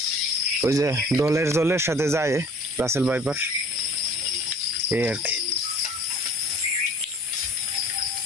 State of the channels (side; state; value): both; normal; correlation 0.49